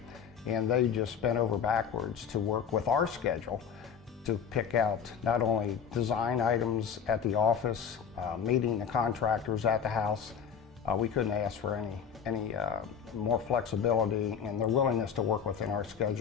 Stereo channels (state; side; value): quieter; right; 7.3 dB